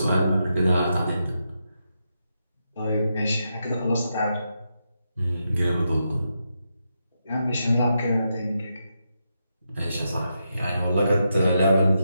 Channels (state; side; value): inverted; both; correlation -0.84